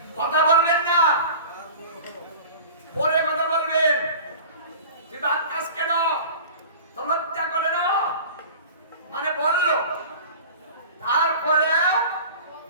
কথা বলবেন না, পরে কথা বলবেন। তুই বাদ কাজ কেন, তো লজ্জা করে না, মানে বললো, তারপরে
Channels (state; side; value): inverted; both; correlation -0.39